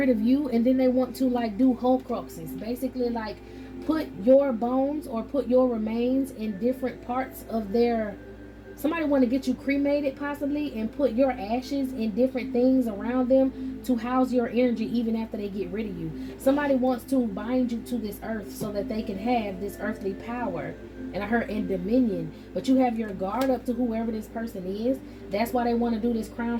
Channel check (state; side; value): identical; both; correlation 1.00